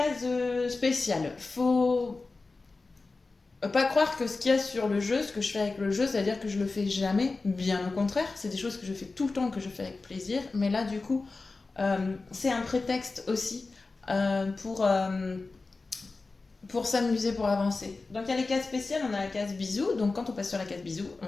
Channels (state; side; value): quieter; right; 3.7 dB